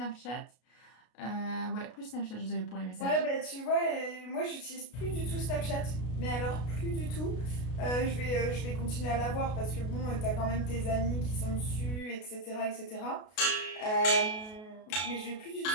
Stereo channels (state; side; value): late; right; 33 ms